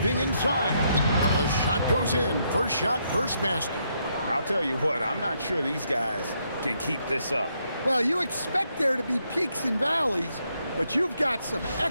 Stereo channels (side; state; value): both; inverted; correlation -0.76